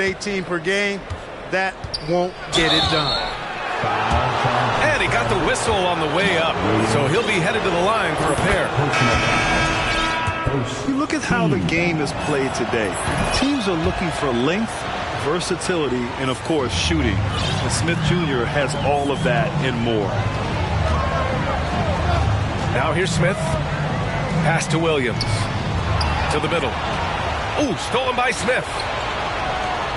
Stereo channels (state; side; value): identical; both; correlation 1.00